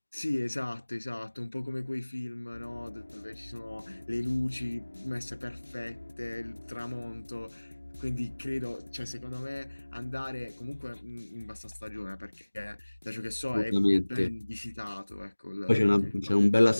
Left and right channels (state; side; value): inverted; both; correlation -1.00